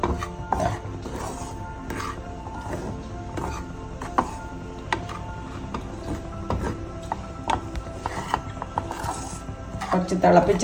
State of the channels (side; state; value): both; identical; correlation 1.00